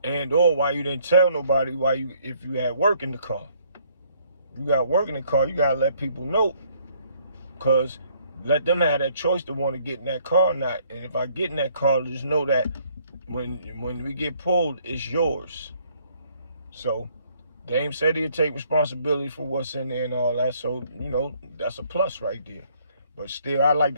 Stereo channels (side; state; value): both; inverted; correlation -0.65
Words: And or why you didn't tell nobody if you had work in the car. You got work in the car, you got to let people know. Because let them have that choice to want to get in that car or not. And if I get in that car, just know that when we get pulled, it's yours. So, Dame said he'd take responsibility for what's in there and all that. So, that's a plus right there. But still, I like